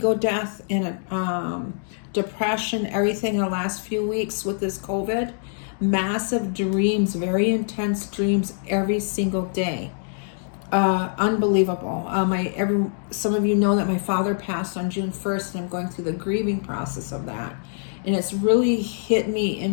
death and a depression, everything in the last few weeks with this COVID. Massive dreams, very intense dreams every single day. Unbelievable. Some of you know that my father passed on June 1st, and I'm going through the grieving process of that. And it's really hit me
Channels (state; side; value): silent; right; digital silence